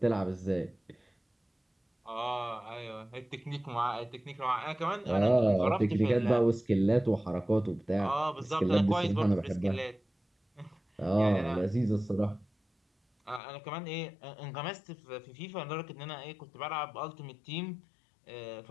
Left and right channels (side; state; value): right; drops out; at 13.4 s